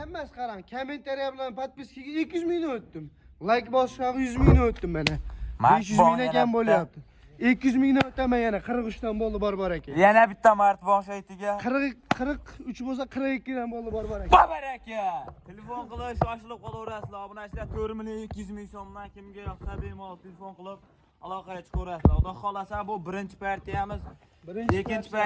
emas, qarang. Kommentariya bilan podpiskaga 200 mingdan o'tdim. Like bosishadi 100 mingdan o'tdim mana. 500 mingdan kam bo'lyapti. 200 mingdan o'taman yana 43 dan bo'ldi bor aka. Yana bitta mart bosh aytiga. 43 bo'lsa 42 dan bo'ldi bor aka. Baraka. Telefon qilish shoshilib qolaverasizlar. Obunachilar 4 million 200 ming so'mdan kimga yoqsa bemalol telefon qilib aloqaga chiqaverasizlar. Xudo xolasa bu birinchi partiyamiz. Ikkinchi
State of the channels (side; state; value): both; identical; correlation 1.00